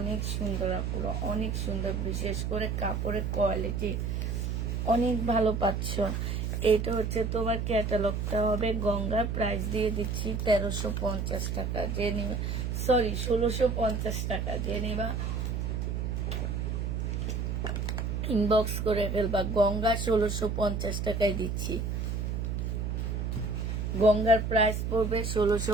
সুন্দর আপুরা, অনেক সুন্দর। বিশেষ করে কাপড়ের কোয়ালিটি অনেক ভালো পাচ্ছ। এটা হচ্ছে তোমার ক্যাটালগটা হবে। গঙ্গা প্রাইস দিয়ে দিচ্ছি 1350 টাকা। যে নিবা, সরি 1650 টাকা। যে নিবা ইনবক্স করে ফেলবা। গঙ্গা 1650 টাকায় দিচ্ছি। গঙ্গার প্রাইস পড়বে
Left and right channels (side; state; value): right; noise; hum, 1 dB below the sound